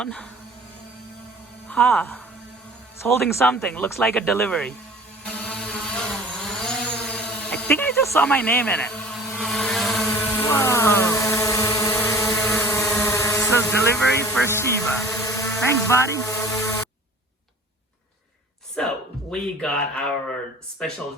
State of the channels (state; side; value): normal; both; correlation 0.44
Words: It's holding something. Looks like a delivery. I think I just saw my name in it. Whoa. So delivery for Shiva. Thanks, buddy. So we got our special